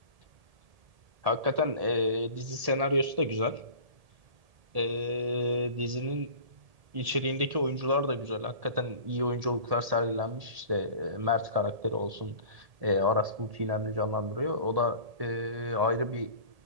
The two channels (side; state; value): left; late; 1.8 ms